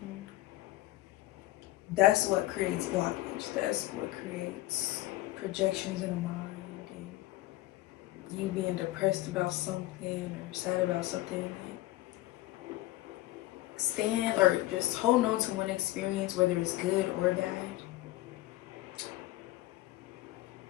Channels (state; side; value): quieter; right; 17.1 dB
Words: That's what creates blockage. That's what creates projections in the mind and you being depressed about something or sad about something. Stand or just hold on to one experience, whether it's good or bad.